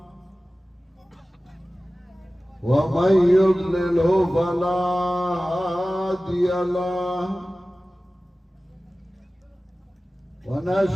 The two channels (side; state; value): both; normal; correlation 0.96